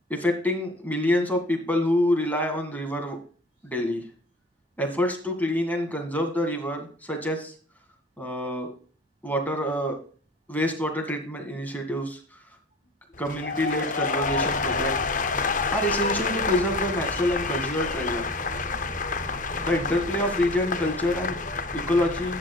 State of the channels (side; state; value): both; normal; correlation 0.41